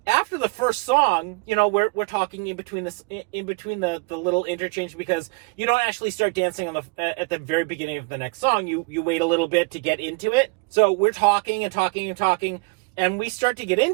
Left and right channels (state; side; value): quieter; left; 30.3 dB